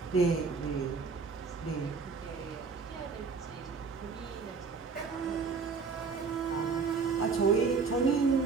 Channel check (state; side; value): quieter; left; 4.9 dB